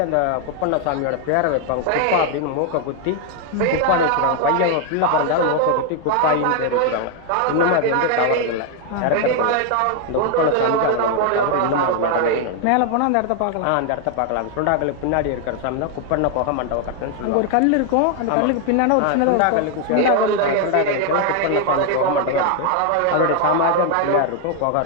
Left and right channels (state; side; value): different; both; correlation 0.00